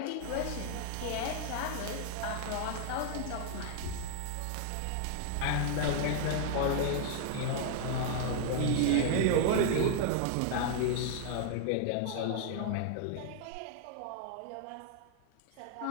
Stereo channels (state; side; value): different; both; correlation 0.00